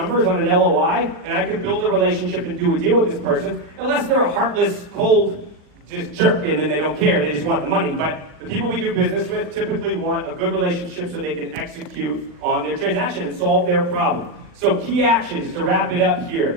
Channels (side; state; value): left; late; 39 ms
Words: on an LOI, and I can build a relationship and do a deal with this person, unless they're a heartless, cold, just jerk, and then they don't care. They just want the money. But the people we do business with typically want a good relationship so they can execute on their transaction and solve their problem. So key actions to wrap it up here.